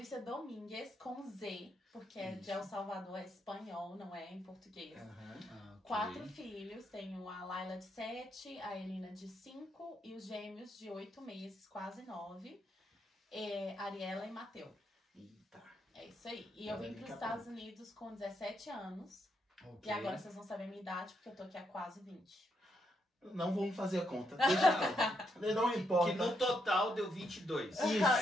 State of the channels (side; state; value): both; normal; correlation 0.78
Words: Domingues, com Z, porque é de Isso. El Salvador, é espanhol, não é em português. Aham. Ah, ok. 4 filhos, tenho a Laila de 7, a Elina de 5 e os gêmeos de 8 meses, quase 9, Ariela e Mateu. Eita. É isso aí. E eu vim para os Estados Unidos com 17 anos. Ok. E agora vocês vão saber a minha idade, porque eu tô aqui há quase 20. Não vamos fazer a conta. Deixa quieto. Não importa. Que no total deu 22.